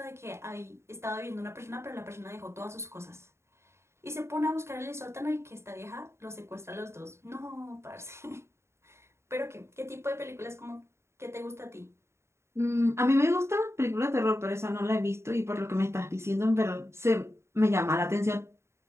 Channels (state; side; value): late; left; 0.13 ms